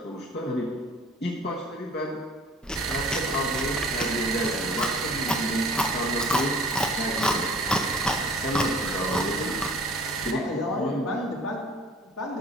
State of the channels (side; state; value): both; normal; correlation 0.48